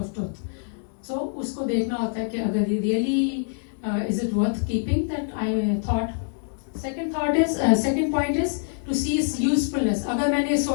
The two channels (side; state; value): right; silent; digital silence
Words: truth. So उसको देखना होता है कि अगर ये really is it worth keeping that I thought. Second point is to see its usefulness. अगर मैंने